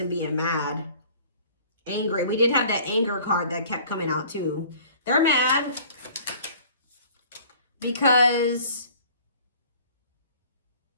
being mad, angry. We did have that anger card that kept coming out too. They're mad because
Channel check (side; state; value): both; inverted; correlation -0.50